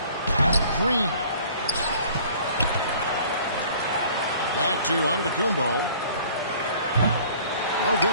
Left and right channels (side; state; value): both; inverted; correlation -0.52